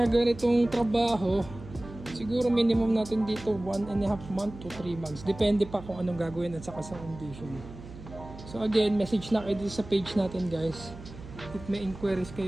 ganitong trabaho, siguro minimum natin dito 1.5 month to 3 months. Depende pa kung anong gagawin at saka sa condition. So again, message na kayo dito sa page natin guys. If may inquiries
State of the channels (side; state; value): right; noise; hum, 15 dB below the sound